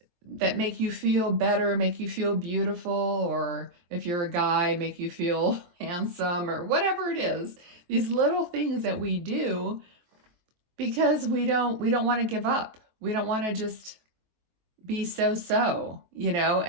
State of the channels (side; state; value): left; late; 23 ms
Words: make you feel better, make you feel beautiful, or if you're a guy, make you feel handsome, or whatever it is. These little things that we do because we don't want to give up. We don't want to just be so,